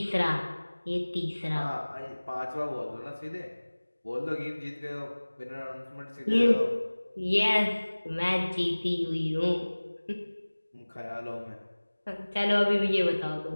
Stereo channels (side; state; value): both; inverted; correlation -1.00